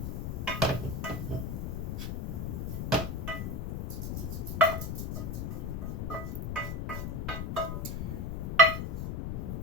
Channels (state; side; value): noise; left; rumble, 2 dB below the sound